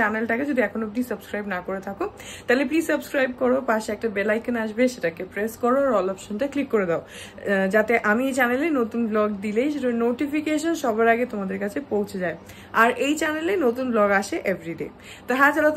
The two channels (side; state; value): both; identical; correlation 1.00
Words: যদি এখন অব্দি সাবস্ক্রাইব না করে থাকো তাহলে প্লিজ সাবস্ক্রাইব করো। পাশে একটা বেল আইকন আসবে, সেটাকে প্রেস করো, আর অল অপশনটা ক্লিক করে দাও, যাতে আমি এই চ্যানেলে নতুন ব্লগ দিলেই সেটার নোটিফিকেশন সবার আগে তোমাদের কাছে পৌঁছে যায়। আর এই চ্যানেলে নতুন ব্লগ আসে এভরিডে। তো হ্যাঁ, চলো,